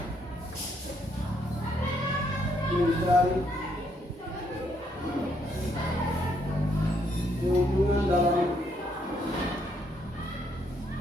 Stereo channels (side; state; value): both; normal; correlation 0.72